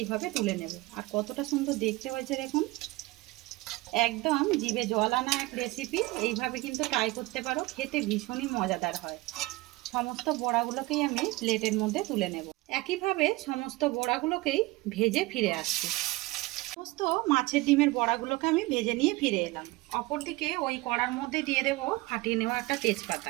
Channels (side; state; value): left; quieter; 21.0 dB